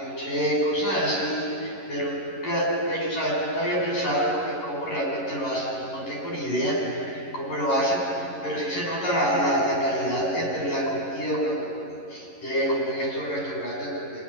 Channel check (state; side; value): late; right; 11 ms